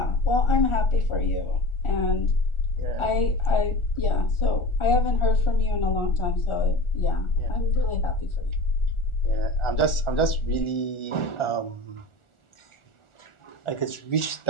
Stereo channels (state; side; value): late; right; 1.4 ms